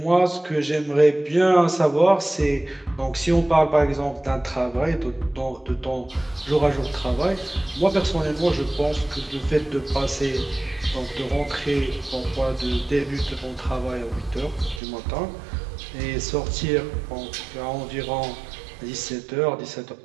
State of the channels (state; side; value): drops out; left; at 14.8 s